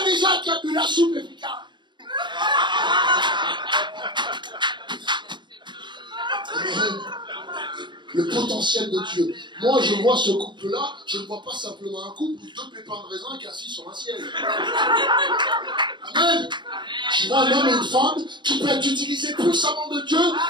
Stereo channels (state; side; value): late; left; 0.22 ms